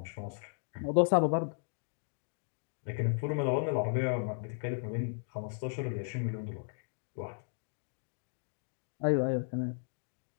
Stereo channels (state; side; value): silent; right; digital silence